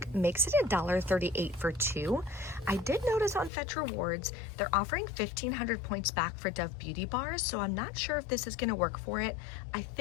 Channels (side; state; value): right; drops out; at 3.5 s